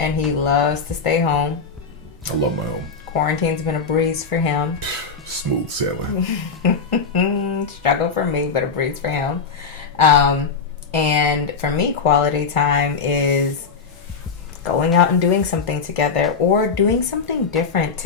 he loves to stay home. I love my own. Quarantine's been a breeze for him. Smooth sailing. Struggle for me, but a breeze for him. And for me, quality time is going out and doing something together or doing something different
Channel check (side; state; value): right; quieter; 5.2 dB